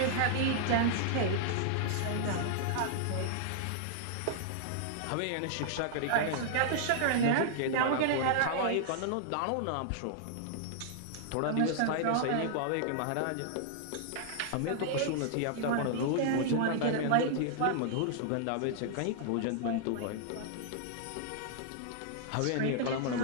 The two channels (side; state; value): both; different; correlation -0.01